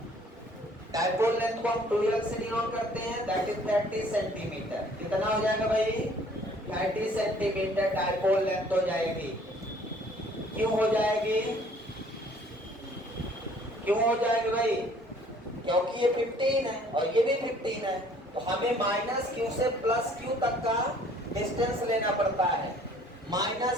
डायपोल लेंथ को हम 12 से डिनोट करते हैं, दैट इज 30 सेंटीमीटर। कितना हो जाएगा भाई? 30 सेंटीमीटर डायपोल लेंथ हो जाएगी। क्यों हो जाएगी? क्यों हो जाएगी भाई? क्योंकि ये 15 है और ये भी 15 है, तो हमें -q से +q तक का डिस्टेंस लेना पड़ता है।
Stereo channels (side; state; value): both; normal; correlation 0.57